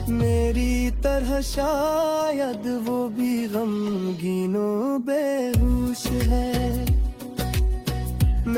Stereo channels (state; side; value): identical; both; correlation 1.00